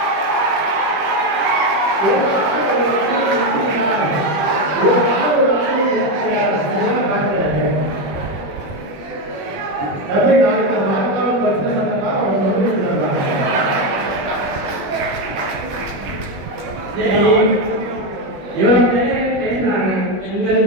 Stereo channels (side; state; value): left; late; 21 ms